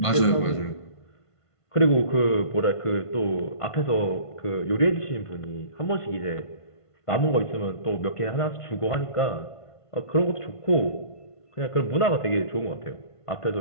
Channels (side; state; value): right; late; 1.5 ms